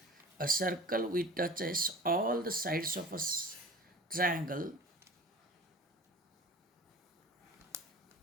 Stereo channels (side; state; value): both; normal; correlation 0.41